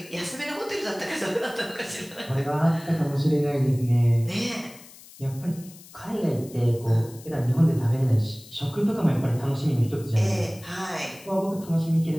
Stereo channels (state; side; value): noise; left; hiss, 20 dB below the sound